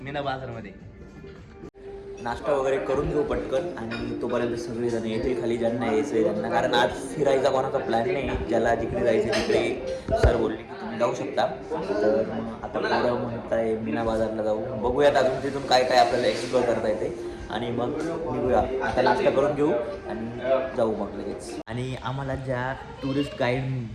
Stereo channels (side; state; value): both; identical; correlation 1.00